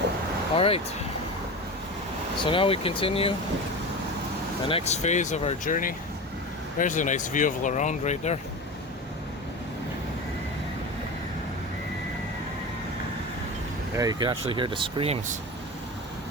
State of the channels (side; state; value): both; normal; correlation 0.28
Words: All right. So now we continue the next phase of our journey. There's a nice view of Lorone right there. Yeah, you can actually hear the screams.